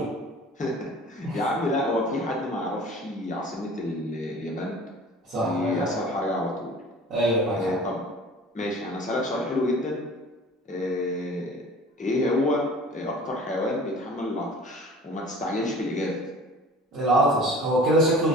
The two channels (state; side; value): normal; both; correlation 0.43